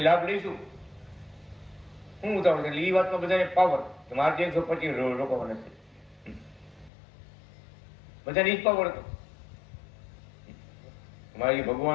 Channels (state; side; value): drops out; right; at 6.9 s